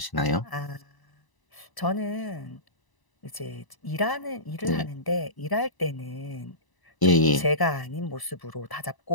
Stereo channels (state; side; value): late; right; 1.0 ms